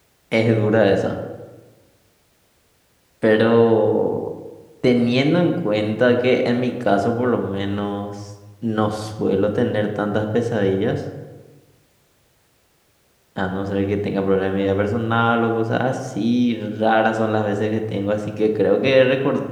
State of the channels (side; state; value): both; identical; correlation 1.00